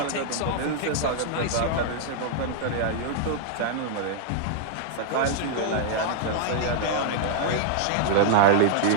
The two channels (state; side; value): different; both; correlation -0.01